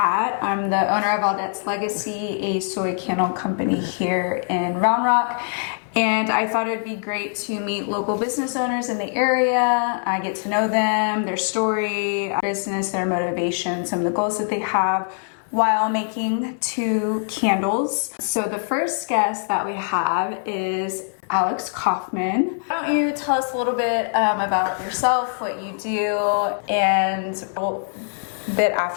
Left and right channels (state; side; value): silent; right; 64 dB below the other